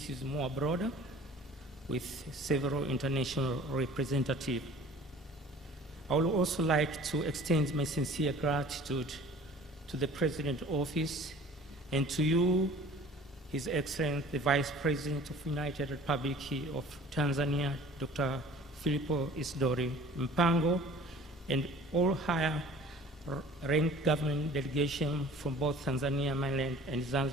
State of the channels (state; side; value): normal; both; correlation 0.47